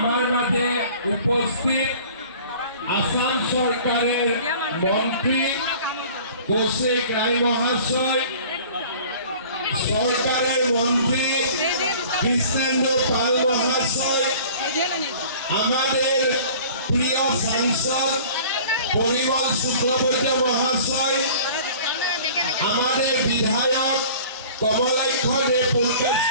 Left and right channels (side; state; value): both; inverted; correlation -0.46